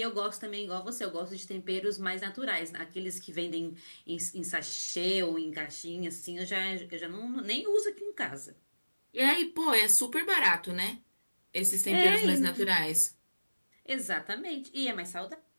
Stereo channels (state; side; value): inverted; both; correlation -1.00